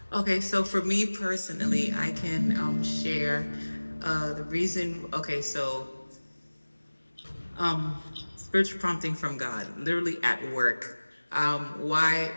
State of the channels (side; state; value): both; inverted; correlation -1.00